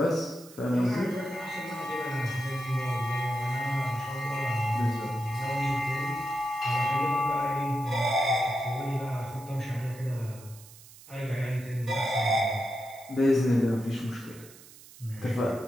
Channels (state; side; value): noise; right; hiss, 20 dB below the sound